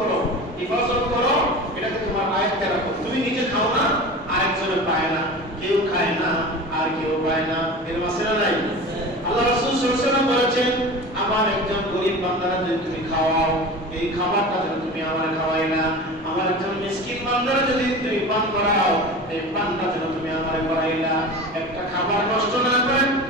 হেফাজত করো, এটাকে তোমার আয়ত্তে রাখো। তুমি নিজে খাও না, আরেকজনে পায় না, কেউ খায় না আর কেউ পায় না, এর মাঝে নাই। আল্লাহ রাসূল সাল্লাল্লাহু আলাইহি ওয়াসাল্লাম বলেছেন আমার একজন গরীব বান্দারা যদি তুমি খাওয়াও, এই খাবারটা যদি তুমি আমার খাওয়াই না, আমার একজন মিসকিন বান্দারা যদি তুমি পান করাও, এই পানটা যদি তুমি আমার করাই না, একটা খাবার নষ্ট না করে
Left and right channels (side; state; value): both; normal; correlation 0.33